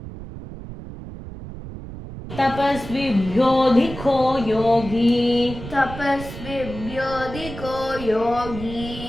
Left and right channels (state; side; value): noise; right; rumble, 11 dB below the sound